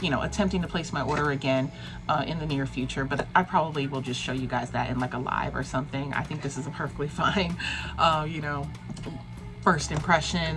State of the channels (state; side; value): identical; both; correlation 1.00